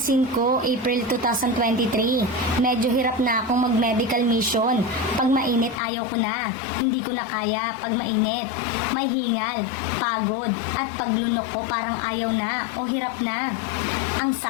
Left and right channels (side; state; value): right; drops out; at 5.8 s